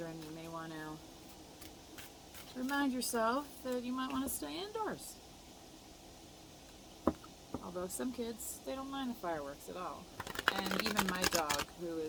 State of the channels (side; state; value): both; identical; correlation 1.00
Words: you may want to remind yourself that you might want to stay indoors. Although some kids, they don't mind the fireworks at all. And even my dog, who